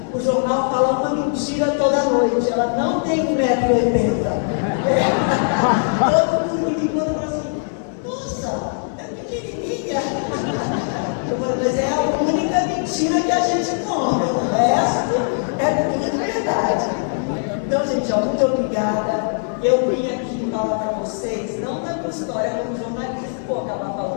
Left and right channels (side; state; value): right; silent; 62 dB below the other